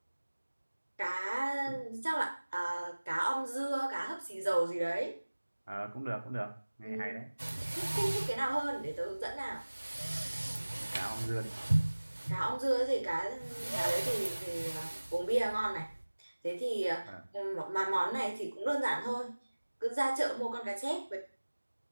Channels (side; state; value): both; inverted; correlation -1.00